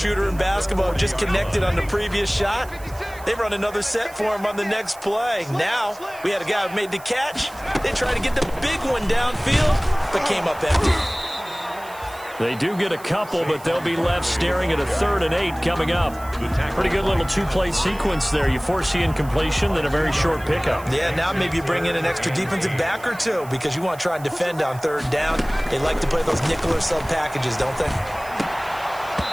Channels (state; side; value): noise; right; hiss, 20 dB below the sound